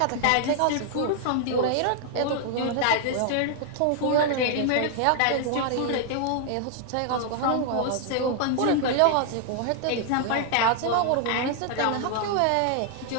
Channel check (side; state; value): both; different; correlation 0.00